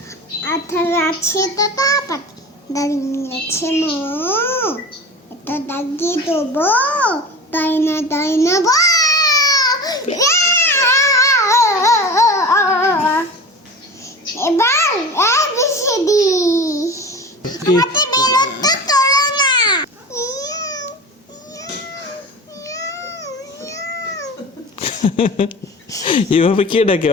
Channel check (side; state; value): both; normal; correlation 0.33